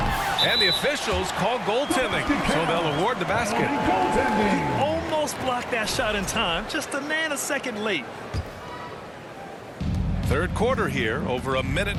And the officials call goaltending, so they'll award the basket. He almost blocked that shot in time, just a nanosecond late. Third quarter here, over a minute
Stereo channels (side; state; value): both; identical; correlation 1.00